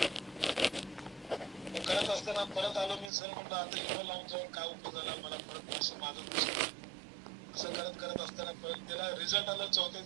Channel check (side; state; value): left; drops out; at 3.1 s